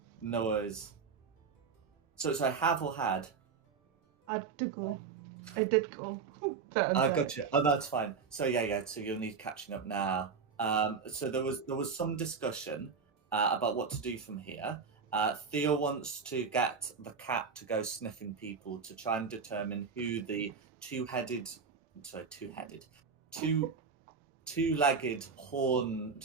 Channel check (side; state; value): left; quieter; 5.6 dB